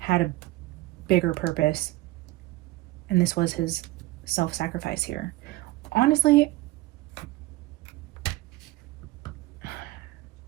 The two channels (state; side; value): quieter; left; 18.6 dB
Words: a bigger purpose. And this was his self-sacrifice here. Honestly,